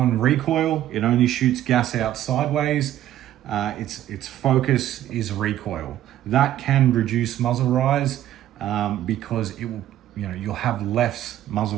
recoil. It only shoots gas out sideways. Its focus is recoil. That can reduce muzzle rise because it will, you'll have less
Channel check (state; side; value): quieter; left; 12.6 dB